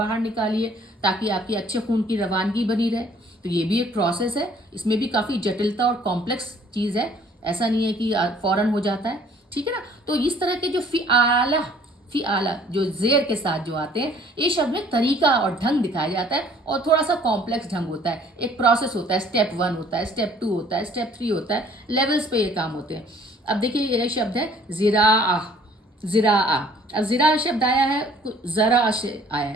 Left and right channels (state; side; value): normal; both; correlation 0.57